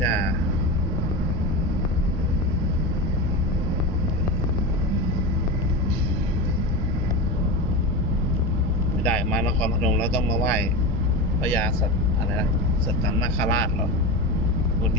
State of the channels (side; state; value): both; normal; correlation 0.22